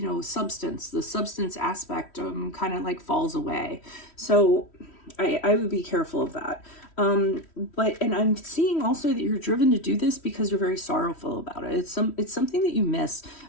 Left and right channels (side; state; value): right; late; 3.1 ms